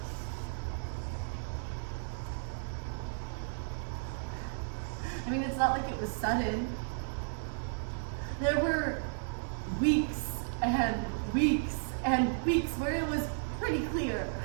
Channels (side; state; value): left; silent; digital silence